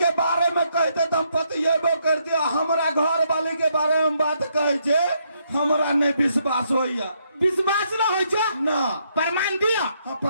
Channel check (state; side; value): inverted; both; correlation -0.75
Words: के बारे में कहते तो हम पतिएबो कर दिया हमरा घर वाले के बारे में बात कहे छे हमरा नहीं विश्वास होइया विश्वास न हो छ ना प्रमाण दियो हां